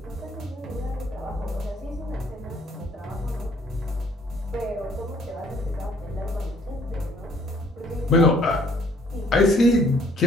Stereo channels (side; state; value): both; normal; correlation 0.61